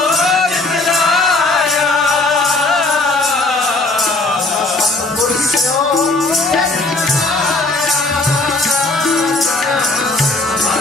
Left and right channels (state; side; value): quieter; right; 3.0 dB